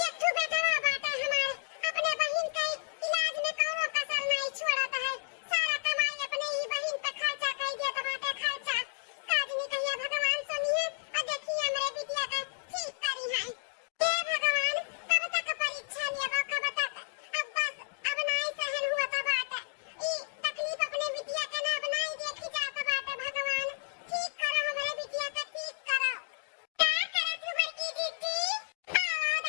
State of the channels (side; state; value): right; silent; digital silence